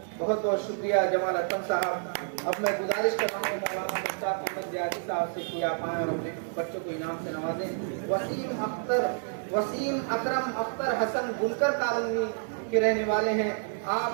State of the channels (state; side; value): silent; left; digital silence